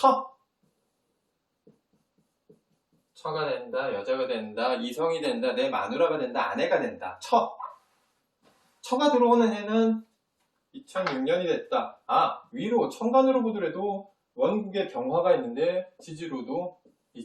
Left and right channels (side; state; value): both; identical; correlation 1.00